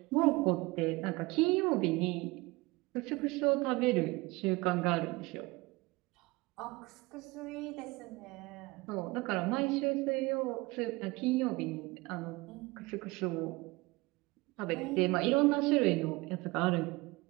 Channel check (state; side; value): quieter; left; 22.9 dB